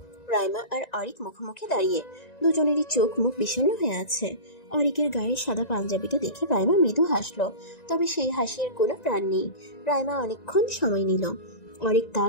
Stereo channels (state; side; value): late; right; 1.9 ms